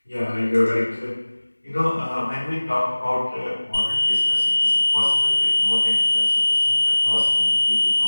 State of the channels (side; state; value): both; inverted; correlation -1.00